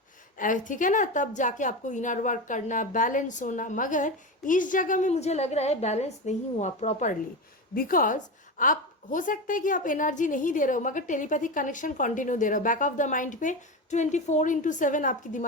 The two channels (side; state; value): both; normal; correlation 0.21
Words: ठीक है ना, तब जाके आपको इनर वर्क करना, बैलेंस होना, मगर इस जगह में मुझे लग रहा है बैलेंस नहीं हुआ प्रॉपरली, बिकॉज आप हो सकता है कि आप एनर्जी नहीं दे रहे हो मगर टेलीपैथिक कनेक्शन कंटिन्यू दे रहे हो, बैक ऑफ द माइंड पे 24/7 आपके